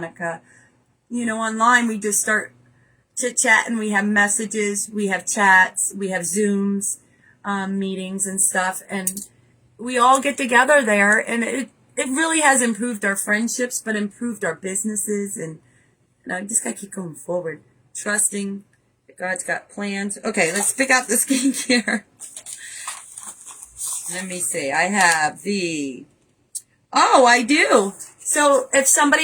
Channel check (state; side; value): identical; both; correlation 1.00